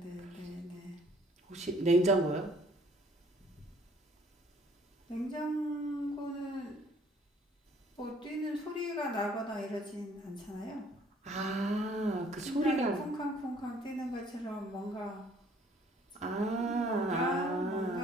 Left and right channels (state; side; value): normal; both; correlation 0.59